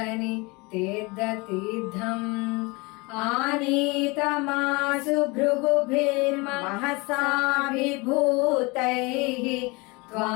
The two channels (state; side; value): quieter; right; 26.2 dB